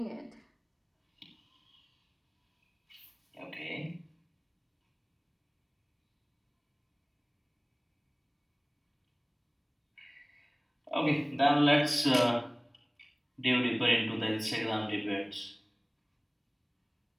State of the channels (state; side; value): identical; both; correlation 1.00